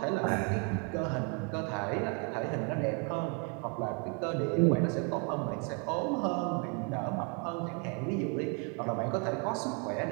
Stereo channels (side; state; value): left; quieter; 35.0 dB